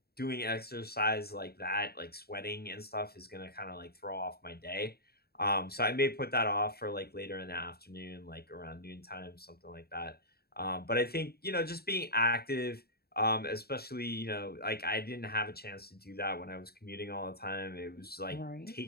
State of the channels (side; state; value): right; late; 0.46 ms